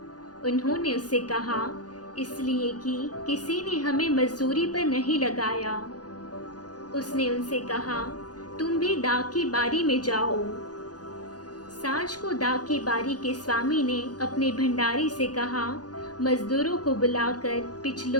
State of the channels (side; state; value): right; late; 0.69 ms